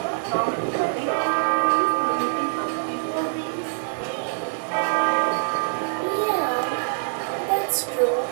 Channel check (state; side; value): silent; left; digital silence